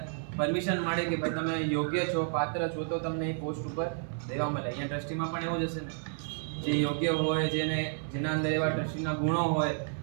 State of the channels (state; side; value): silent; left; 57 dB below the other